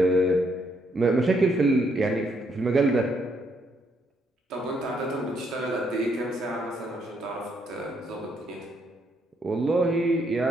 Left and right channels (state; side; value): normal; both; correlation 0.73